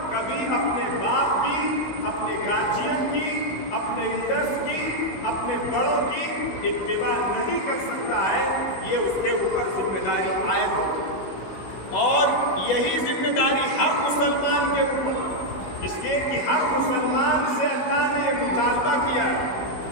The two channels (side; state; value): right; late; 16 ms